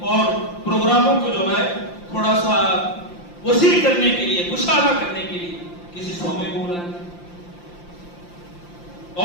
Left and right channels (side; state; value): right; late; 5.8 ms